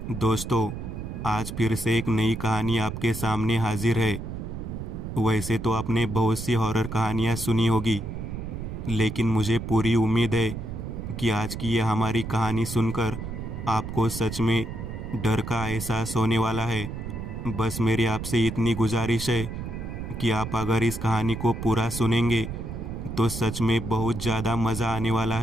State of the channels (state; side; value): noise; right; rumble, 7 dB below the sound